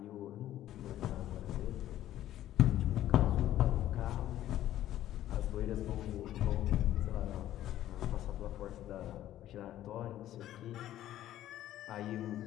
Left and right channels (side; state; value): right; quieter; 13.0 dB